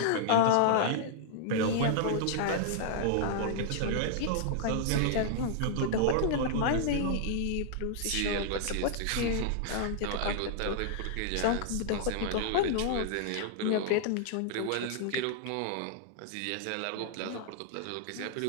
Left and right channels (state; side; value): different; both; correlation -0.01